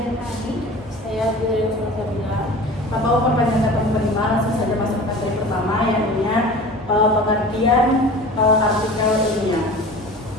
Saya Bidari Sulsabila. Tanpa memperpanjang kata penerima, langsung saja masuk ke materi pertama, yakni pengertian artikel ilmiah.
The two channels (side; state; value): both; normal; correlation 0.39